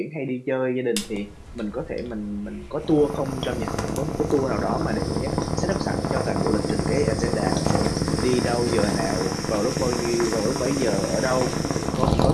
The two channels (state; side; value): identical; both; correlation 1.00